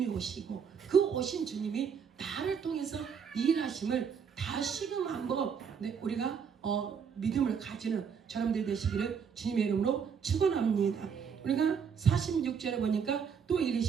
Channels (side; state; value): left; quieter; 6.8 dB